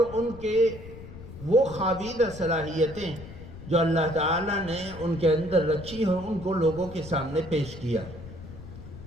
ان کے وہ خوابیدہ صلاحیتیں جو اللہ تعالیٰ نے ان کے اندر رکھی ہیں ان کو لوگوں کے سامنے پیش کیا.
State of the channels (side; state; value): left; noise; rumble, 14 dB below the sound